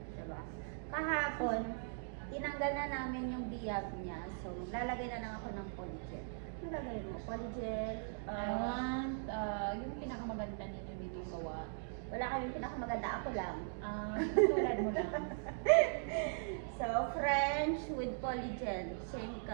Diba? Kahapon, tinanggal na namin yung biyag niya. So, lalagay na lang ako ng polygel. Ano lagay mo? Polygel? Yung pinakamaganda ninyo dito gawa. Wala kaming pinakamaganda. Ako lang. Tulad mo lang. So, French with polygel. Same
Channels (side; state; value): left; silent; digital silence